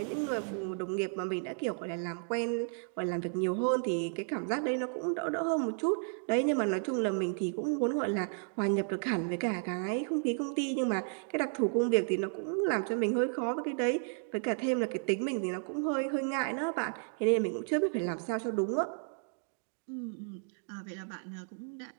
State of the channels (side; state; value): left; silent; 56 dB below the other